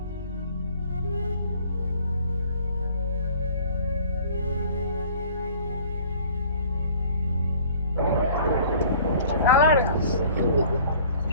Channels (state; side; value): inverted; both; correlation -0.51